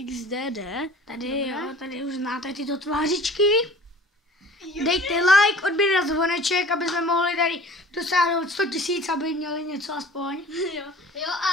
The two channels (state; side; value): normal; both; correlation 0.46